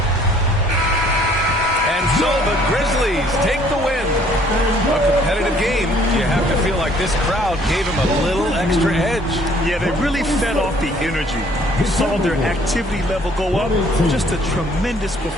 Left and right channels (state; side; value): normal; both; correlation 0.60